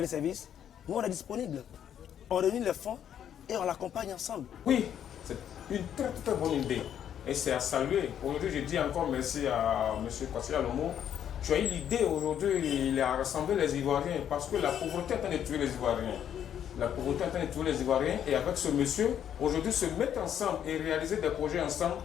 service, nous on est disponible. On réunit les fonds et on l'accompagne ensemble. Oui, c'est une très très bonne idée et c'est à saluer. Aujourd'hui, je dis encore merci à M. Kwasi Alomo. Tu as eu l'idée aujourd'hui, il a rassemblé les Ivoiriens parce que la pauvreté est en train de tuer les Ivoiriens. La pauvreté est en train de tuer les Ivoiriens et avec ce monsieur, aujourd'hui, se mettre ensemble et réaliser des projets ensemble,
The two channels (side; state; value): right; quieter; 9.6 dB